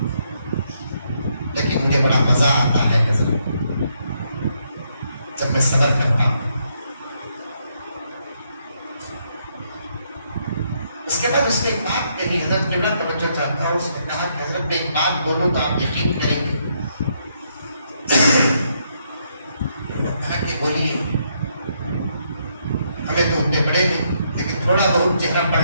لیکن مجھے بڑا مزہ آتا ہے حضرت جب میں صبر کرتا ہوں. اس کے بعد اس نے ایک بات کہی، حضرت جملہ توجہ چاہتا ہوں. اس نے کہا کہ حضرت میں ایک بات بولوں تو آپ یقین کریں گے. کہا کہ بولیے. ہمیں تو اتنے بڑے نہیں لیکن تھوڑا بہت چہرہ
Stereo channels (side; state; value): both; inverted; correlation -0.75